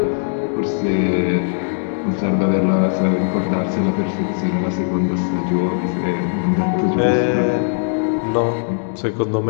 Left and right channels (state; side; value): silent; right; digital silence